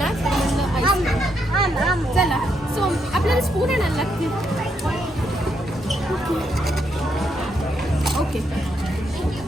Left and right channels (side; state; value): both; normal; correlation 0.78